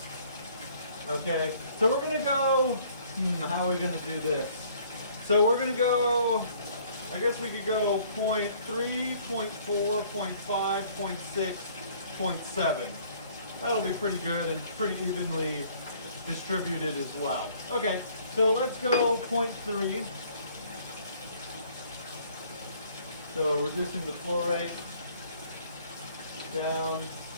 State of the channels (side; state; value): both; inverted; correlation -0.59